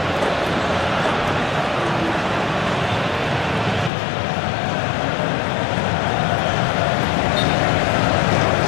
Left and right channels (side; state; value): right; drops out; at 3.9 s